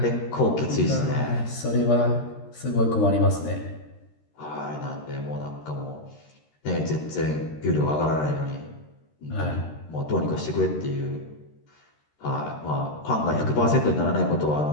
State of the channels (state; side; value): late; right; 13 ms